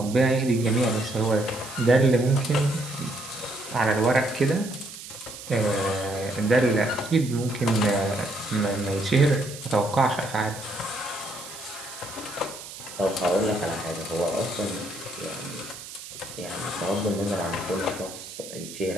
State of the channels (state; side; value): noise; right; hiss, 13 dB below the sound